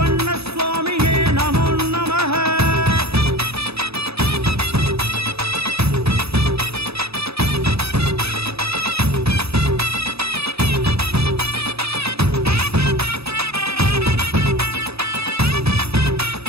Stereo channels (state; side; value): late; left; 0.78 ms